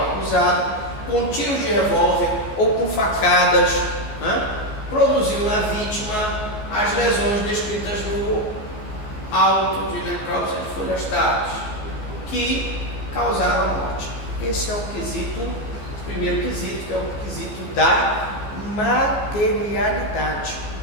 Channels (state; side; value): late; right; 14 ms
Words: acusado, com tiros de revólver ou com facadas, produziu na vítima as lesões descritas no auto de necrópsia de folhas táteis, que causaram a morte. Esse é o quesito, o primeiro quesito, que é o quesito da materialidade.